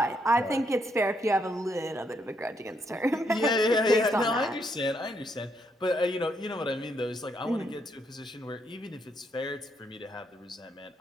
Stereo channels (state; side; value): normal; both; correlation 0.75